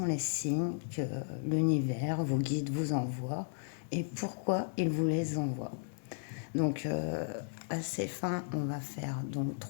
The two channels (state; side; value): silent; right; 55 dB below the other